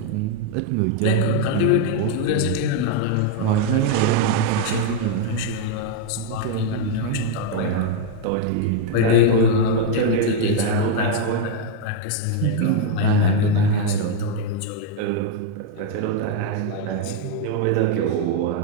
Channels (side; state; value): both; different; correlation 0.00